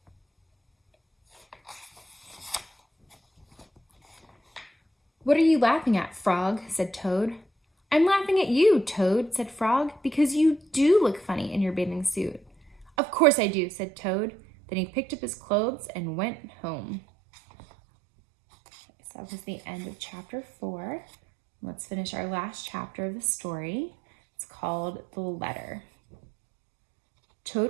"What are you laughing at, Frog?" said Toad. "I'm laughing at you, Toad," said Frog, "because you do look funny in your bathing suit." "Of course I do," said Toad. Then he picked up his clothes and went home. So that was the end of chapter 4. Let's finish our last chapter of the story. It's called The Letter.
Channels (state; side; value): drops out; left; at 12.9 s